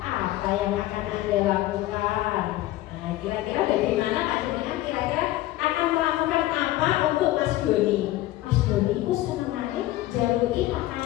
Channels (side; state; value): right; quieter; 15.8 dB